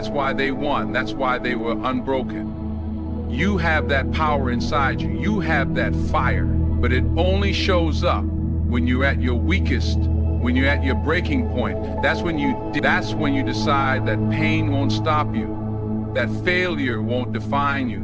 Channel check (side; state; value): both; identical; correlation 1.00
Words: why they won. That's why they were unbroken. You have that power inside you. You have that fire, but it only shows up when you're at your weakest, when you're at your breaking point. That's when you decide that pain won't stop you, that failure won't define